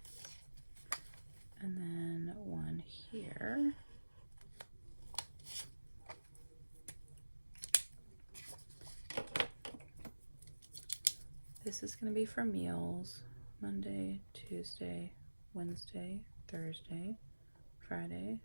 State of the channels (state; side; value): inverted; both; correlation -1.00